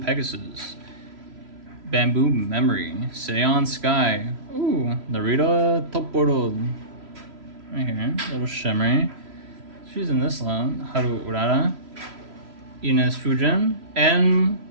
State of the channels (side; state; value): left; late; 3.0 ms